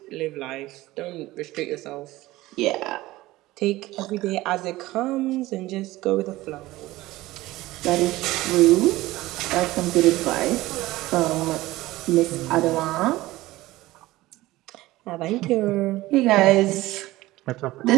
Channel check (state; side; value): quieter; left; 17.9 dB